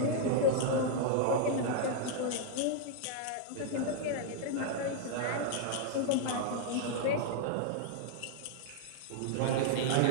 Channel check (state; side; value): different; both; correlation -0.01